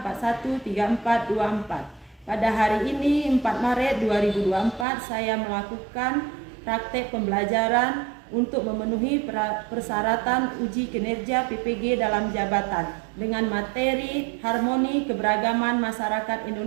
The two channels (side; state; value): left; drops out; at 4.9 s